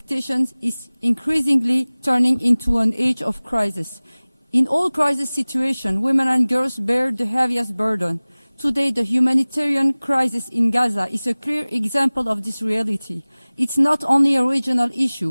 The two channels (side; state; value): both; inverted; correlation -0.99